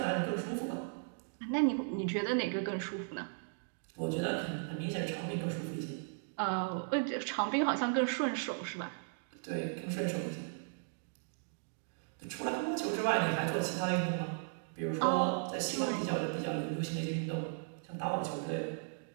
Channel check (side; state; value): left; silent; digital silence